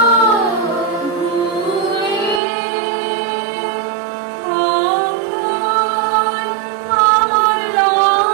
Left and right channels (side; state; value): left; drops out; at 2.4 s